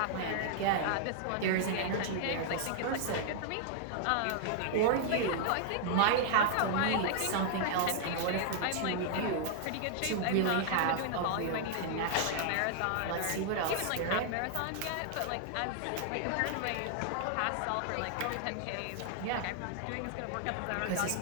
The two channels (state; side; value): different; both; correlation -0.01